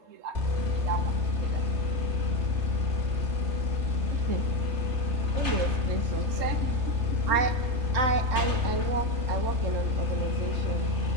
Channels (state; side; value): late; left; 3.3 ms